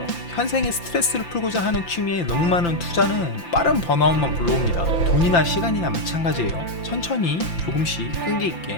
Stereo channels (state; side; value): late; right; 5.8 ms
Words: 현생의 스트레스를 풀고자 하는 취미에 너무 많은 투자는 빠른 번아웃만 불러옵니다. 돈이나 시간이나 마찬가지예요. 천천히 조금씩 끈기